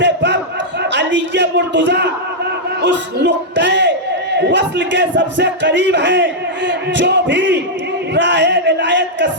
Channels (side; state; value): both; normal; correlation -0.06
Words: پر علی مرتضیٰ اس نقطۂ وصل کے سب سے قریب ہیں۔ جو بھی راہ ولایت کا